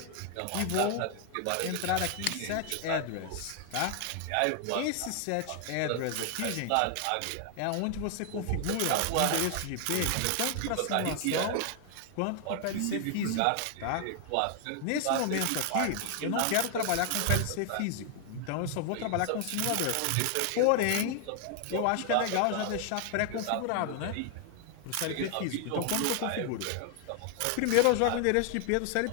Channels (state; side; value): different; both; correlation 0.00